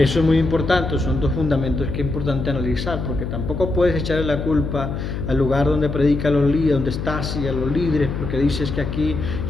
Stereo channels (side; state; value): left; noise; hum, 4 dB below the sound